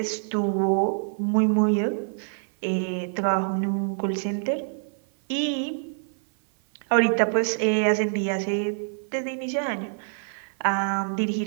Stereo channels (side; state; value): left; silent; 56 dB below the other